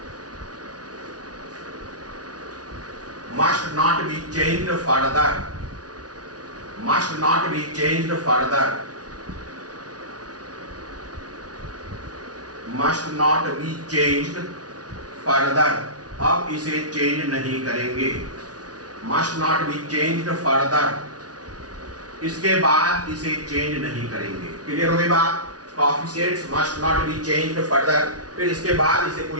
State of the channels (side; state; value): left; late; 0.68 ms